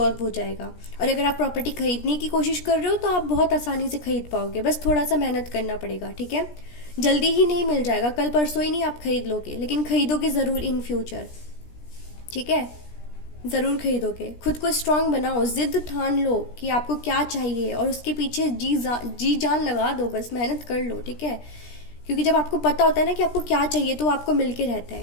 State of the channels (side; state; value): right; late; 17 ms